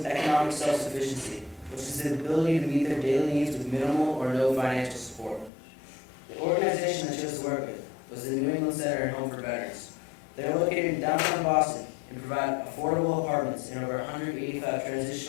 economic self-sufficiency, which is the ability to meet their daily needs with minimal or no financial support. The organization I chose to work with was the New England Center and Home for Veterans. They are located in downtown Boston and provide affordable apartments in over 185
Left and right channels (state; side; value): drops out; right; at 5.5 s